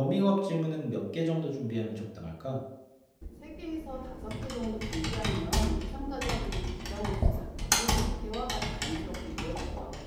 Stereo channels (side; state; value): both; identical; correlation 1.00